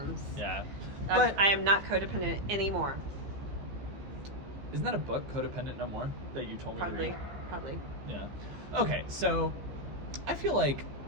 Yeah. But I am not codependent anymore. Isn't that a book, Codependent No More, that you told me to read? Probably. Yeah. Okay, so I feel like,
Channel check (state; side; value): late; left; 15 ms